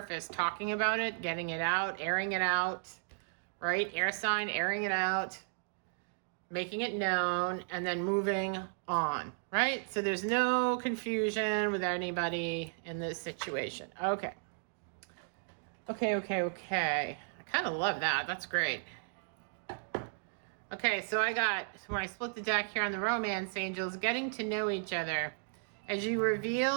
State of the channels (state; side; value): silent; left; digital silence